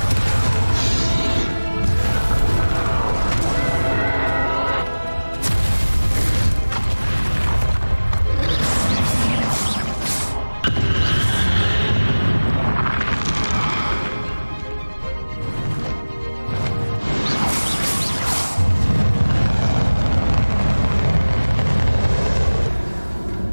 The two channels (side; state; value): both; inverted; correlation -1.00